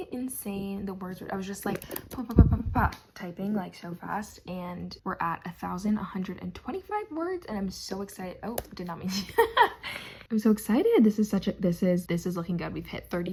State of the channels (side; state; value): both; identical; correlation 1.00